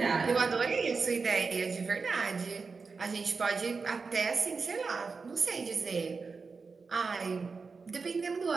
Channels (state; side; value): quieter; left; 4.7 dB